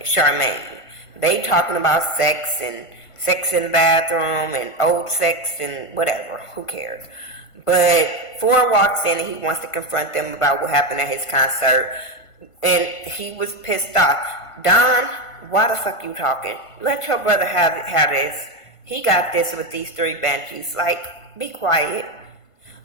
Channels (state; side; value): late; right; 1.5 ms